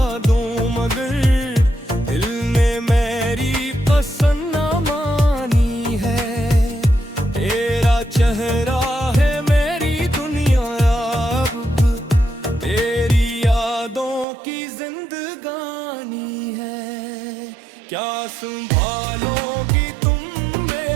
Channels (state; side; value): drops out; left; at 14.2 s